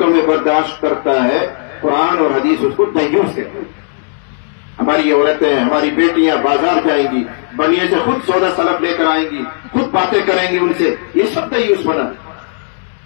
میں برداشت کرتا ہے، قرآن اور حدیث اس کو دیوس کہتے ہیں۔ ہماری عورتیں، ہماری بیٹیاں بازار جائیں گی، بنیے سے خود سودا سلف لے کر آئیں گی، خود باتیں کریں گی ان سے، یہ سب دیوس بنا۔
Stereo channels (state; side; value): silent; right; 66 dB below the other